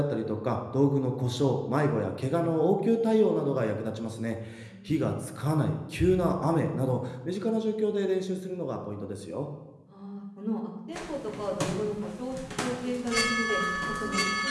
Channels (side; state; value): both; identical; correlation 1.00